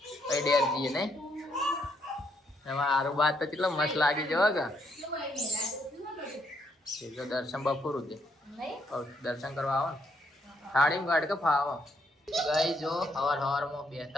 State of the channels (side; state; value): both; normal; correlation 0.74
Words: પછી ડેર જઈએ. નહીં એમાં આરું બાદ તો કેટલો મસ્ત લાગી જવા કે જો દર્શન બપોરું છે દર્શન કરવા આવો ને થાળી ગાડ કે ફાવો. ગાઈ જો સવારમાં